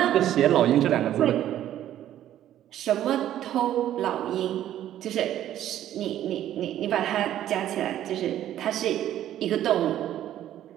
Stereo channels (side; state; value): left; quieter; 11.9 dB